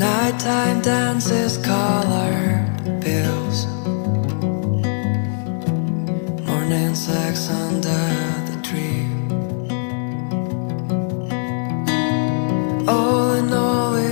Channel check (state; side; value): silent; right; digital silence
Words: dances, colored pills, morning sex under the tree. All in all,